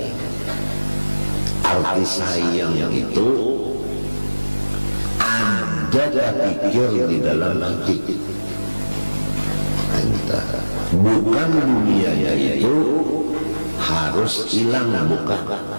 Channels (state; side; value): inverted; both; correlation -1.00